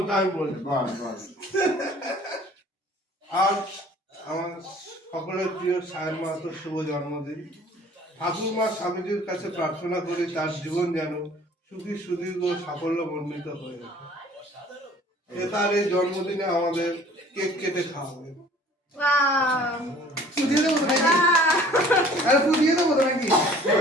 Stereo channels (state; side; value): normal; both; correlation 0.51